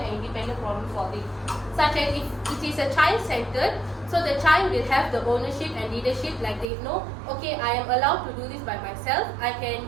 independent problem-solving. Such as if it is a child-centered, so the child will have the ownership and leadership, like they know, okay, I am allowed to do this by myself. I can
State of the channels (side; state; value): left; drops out; at 6.7 s